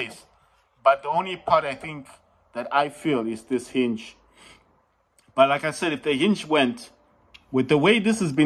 But the only part I think that I feel is this hinge. But like I said, if the hinge went, with the way this has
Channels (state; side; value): identical; both; correlation 1.00